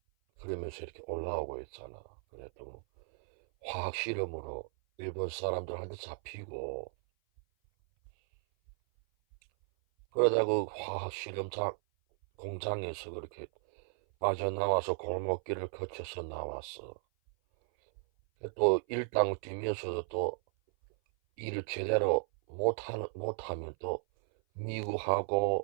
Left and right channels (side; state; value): left; silent; 54 dB below the other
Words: 그러면서 이렇게 올라오고 있잖아. 그래도 뭐 화학 실험으로 일본 사람들한테 잡히고 그러다 그 화학 실험 공장에서 그렇게 빠져나와서 골목길을 거쳐서 나왔어. 또 일당을 뛰면서도 또 일을 제대로 못하면 또